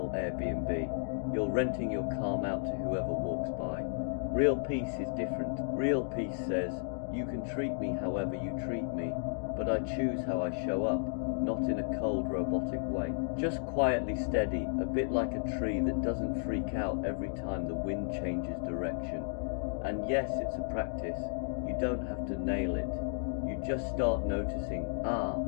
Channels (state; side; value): silent; right; digital silence